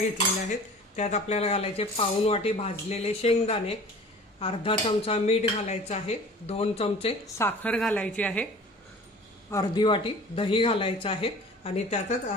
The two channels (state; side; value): normal; both; correlation 0.44